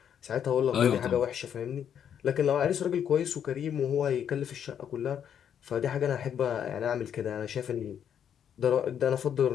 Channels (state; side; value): quieter; right; 8.8 dB